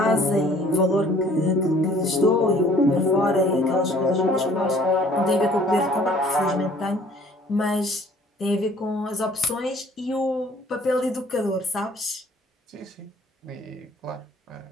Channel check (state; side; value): normal; both; correlation 0.55